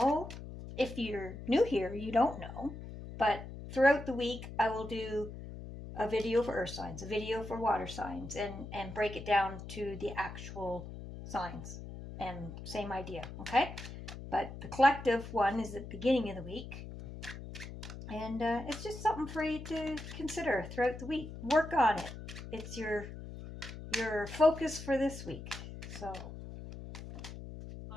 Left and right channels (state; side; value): noise; left; hum, 11 dB below the sound